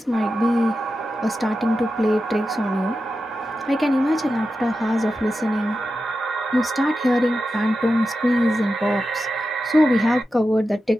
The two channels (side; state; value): both; normal; correlation 0.91